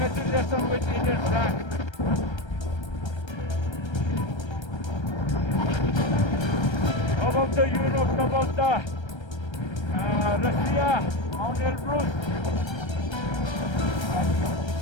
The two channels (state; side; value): late; right; 1.3 ms